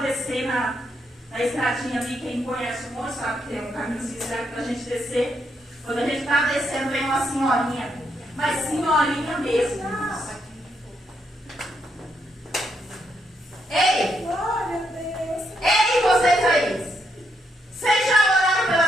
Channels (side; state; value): both; normal; correlation 0.78